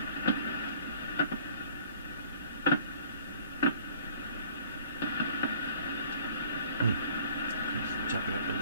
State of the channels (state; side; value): inverted; both; correlation -0.54